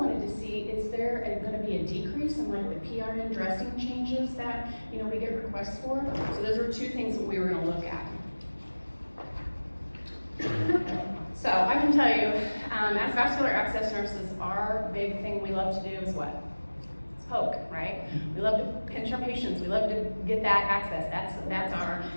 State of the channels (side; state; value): both; inverted; correlation -1.00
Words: to see, is there going to be a decrease in like the PRN dressing changes that we get requests for? So those were 2 things that we were going to look at. So I can tell you, as vascular access nurses, our big thing we love to do is what? It's poke, right? We love to pinch our patients. We love to get that access. That's